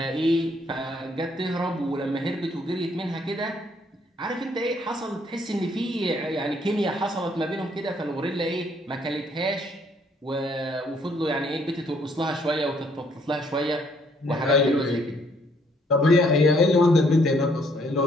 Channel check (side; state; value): both; normal; correlation 0.66